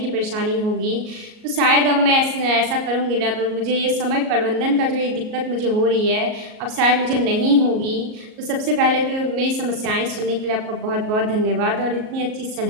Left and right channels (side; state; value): left; late; 38 ms